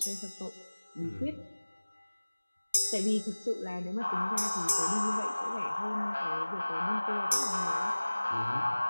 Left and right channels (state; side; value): inverted; both; correlation -1.00